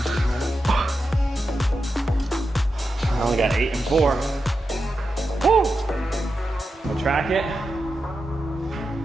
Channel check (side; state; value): both; normal; correlation 0.89